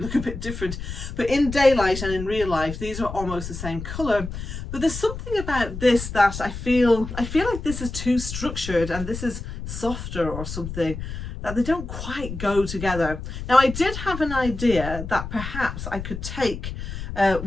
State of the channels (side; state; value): left; noise; rumble, 8 dB below the sound